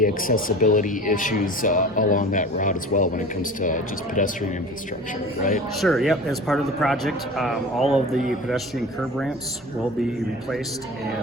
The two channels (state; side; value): normal; both; correlation 0.38